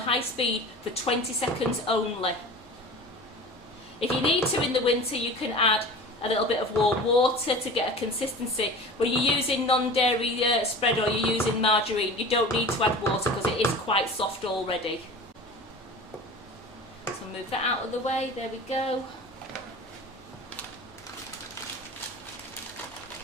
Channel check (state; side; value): normal; both; correlation 0.37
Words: speed for 20 seconds only. If you need to in the winter, you can add a little bit of warm water to get a consistency. When you're using non-dairy spread or you're using margarine, you don't need to add water because it is quite soft already. So move that out of the way, there we go.